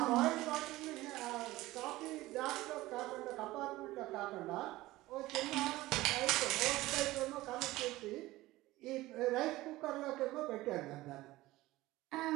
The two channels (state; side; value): quieter; left; 17.9 dB